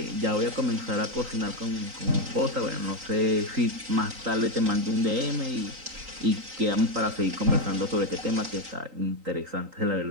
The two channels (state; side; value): late; left; 3.8 ms